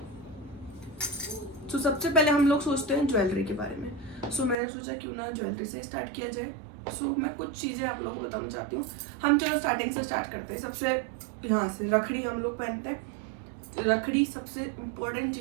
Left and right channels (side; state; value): left; drops out; at 4.5 s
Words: सबसे पहले हम लोग सोचते हैं ज्वेलरी के बारे में। मैंने सोचा क्यों ना ज्वेलरी से स्टार्ट किया जाए। मैं कुछ चीज़ें आप लोगों को बताना चाहती हूँ। हम चलो स्टार्टिंग से स्टार्ट करते हैं। सबसे यहाँ से रखड़ी हम लोग पहनते हैं। रखड़ी सबसे इम्पोर्टेंट